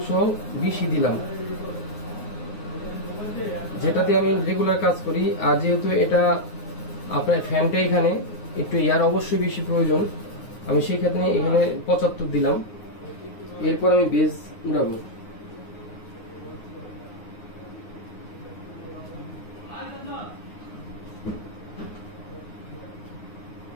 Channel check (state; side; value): late; right; 9.6 ms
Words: দিলাম, যেটাতে আমি রেগুলার কাজ করি। আর যেহেতু এটা আপনার ফ্যানটা এখানে একটু এয়ার অবশ্যই বেশি প্রয়োজন, আমি সেই ক্ষেত্রে এখানে 75 দিলাম। এরপর আমি বেজ উড়াবো।